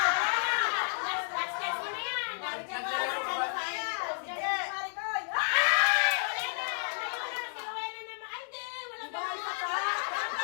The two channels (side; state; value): right; silent; digital silence